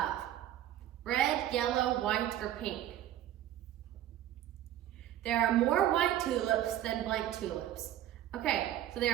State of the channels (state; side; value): quieter; left; 12.3 dB